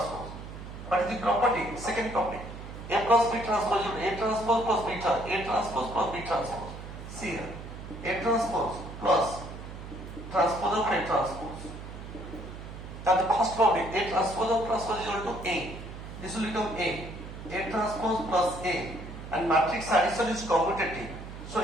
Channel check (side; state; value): right; noise; hum, 11 dB below the sound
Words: What is the property? Second property. A plus B transpose, A transpose plus B transpose, A transpose plus B transpose. See here. A transpose plus transpose of A transpose. Now the first property, A transpose of transpose is equal to A. This will become A. A transpose plus A. And matrix addition is commutative. So